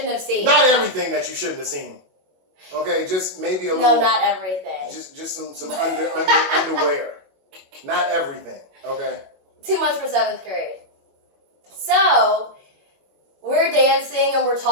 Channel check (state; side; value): late; left; 22 ms